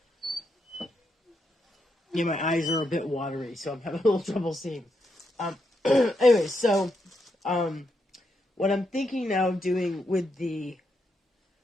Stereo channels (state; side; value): normal; both; correlation 0.81